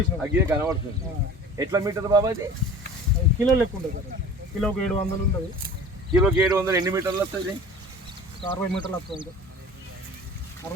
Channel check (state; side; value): normal; both; correlation 0.41